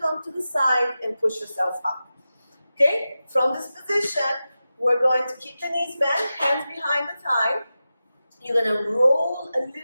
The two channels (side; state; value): both; inverted; correlation -0.93